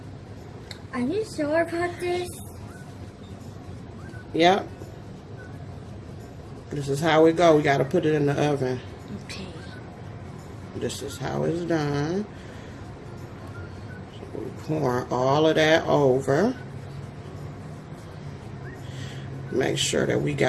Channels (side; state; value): both; identical; correlation 1.00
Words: Are you sure about this? Yep. This is how it go. We got to put it in the oven. Okay. This is how it's done. So we pour all of that over. Make sure that we